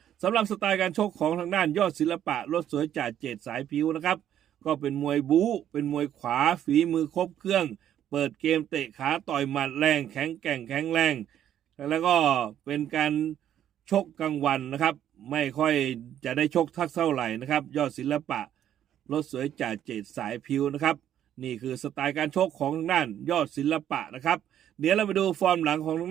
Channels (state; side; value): quieter; left; 10.7 dB